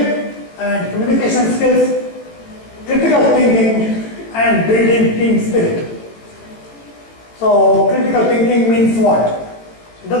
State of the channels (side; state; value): right; late; 18 ms